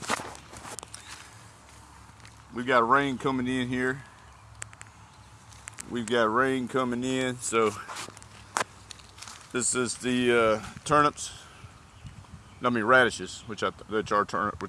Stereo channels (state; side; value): identical; both; correlation 1.00